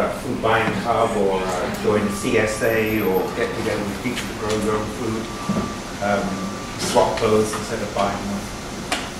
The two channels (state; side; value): identical; both; correlation 1.00